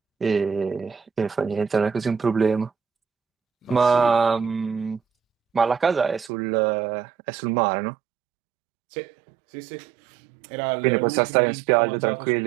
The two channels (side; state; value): left; drops out; at 6.3 s